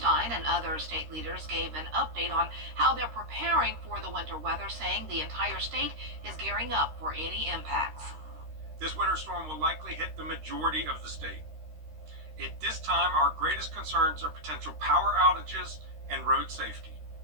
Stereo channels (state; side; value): late; left; 13 ms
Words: and other state leaders gave an update on how they're preparing for the winter weather, saying the entire state is gearing up for any impacts. This winter storm will likely hit the majority of the state. At this time, our greatest concerns are potential power outages and road safety.